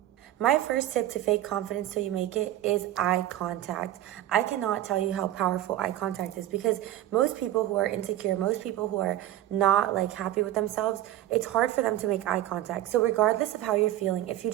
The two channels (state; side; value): quieter; left; 13.6 dB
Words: My first tip to fake confidence till you make it is eye contact. I cannot tell you how powerful eye contact is, because most people who are insecure, most people who are not like happy with themselves, it's hard for them to make eye contact. So regardless of how you're feeling, if you